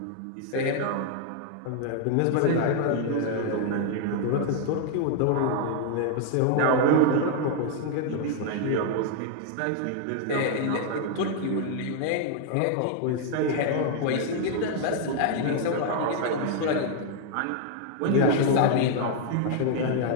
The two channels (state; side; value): different; both; correlation 0.00